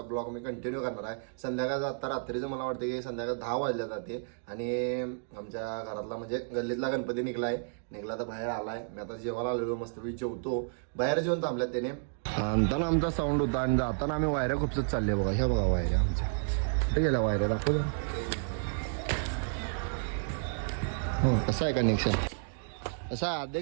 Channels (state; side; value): silent; left; digital silence